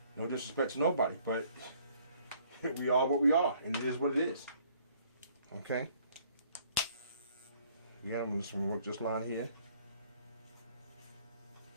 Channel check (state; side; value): inverted; both; correlation -0.61